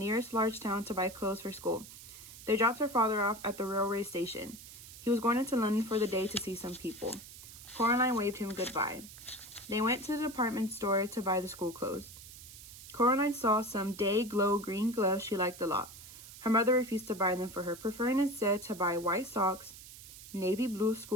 large town to buy clothes for school. They dropped her father off at the railway station. He was going into London for the day to see some people. Coraline waved him goodbye. They went to the department store to buy the school clothes. Coraline saw some day-glow green gloves she liked a lot. Her mother refused to buy them for her, preferring instead to buy white socks, navy blue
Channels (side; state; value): right; noise; hiss, 16 dB below the sound